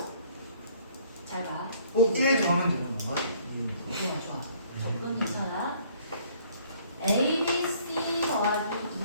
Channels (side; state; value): both; inverted; correlation -0.60